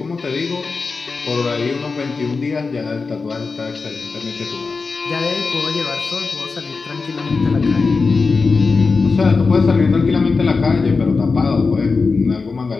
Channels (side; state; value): right; quieter; 4.4 dB